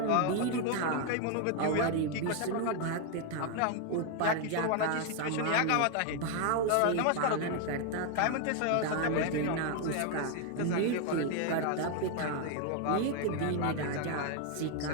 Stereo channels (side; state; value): both; different; correlation 0.01